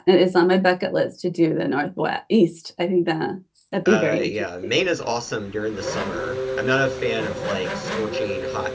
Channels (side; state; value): both; identical; correlation 1.00